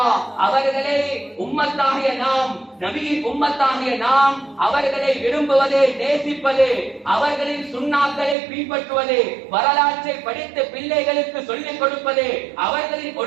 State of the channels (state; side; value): drops out; left; at 8.3 s